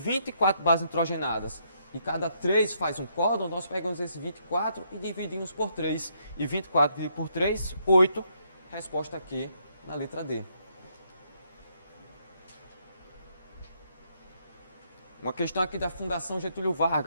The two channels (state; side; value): inverted; both; correlation -0.73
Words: bases nitrogenadas e cada 3 faz um códon, nós pegamos esses 24 e dividimos por 3. E 24 dividido por 3, 8. Resposta aqui na letra D. Uma questão aqui da Fundação Getúlio